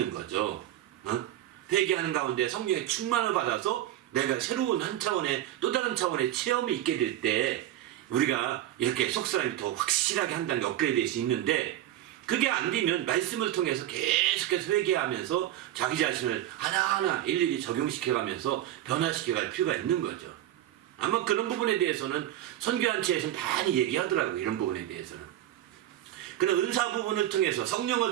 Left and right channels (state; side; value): quieter; left; 13.0 dB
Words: 거죠. 회개하는 가운데 성령의 충만을 받아서 내가 새로운 한 차원의 또 다른 차원의 체험이 있게 될 때 우리가 이렇게 속사람이 더 확실하게 한 단계 업그레이드 될 수 있는데 그게 안 되면 말씀을 통해서 계속해서 회개하면서 자기 자신을 하나하나 일일이 적용시켜가면서 변화시켜갈 필요가 있는 거죠. 아마 그런 부분에 대해서는 선교한체에서 많이 얘기하더라고요. 이런 부분에 대해서는. 그런 은사 부분을 통해서